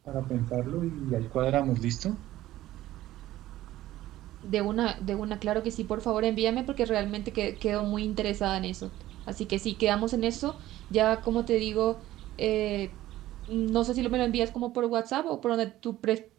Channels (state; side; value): quieter; left; 14.9 dB